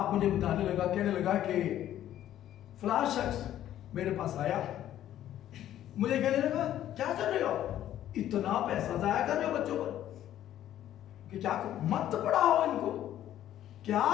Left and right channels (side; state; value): right; quieter; 12.0 dB